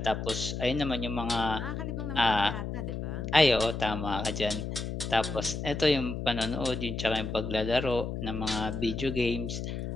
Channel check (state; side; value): noise; left; hum, 4 dB below the sound